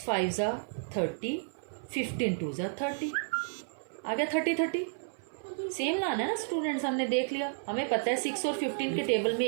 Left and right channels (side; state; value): left; silent; 57 dB below the other